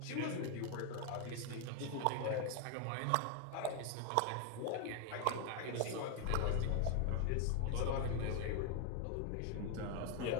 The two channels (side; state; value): both; different; correlation 0.01